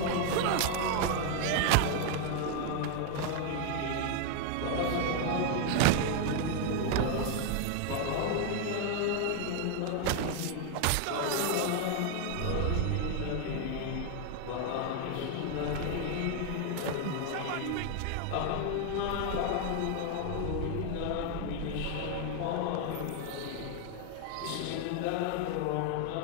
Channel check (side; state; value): both; different; correlation 0.00